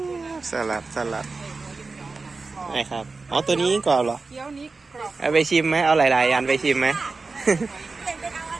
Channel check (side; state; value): left; quieter; 4.0 dB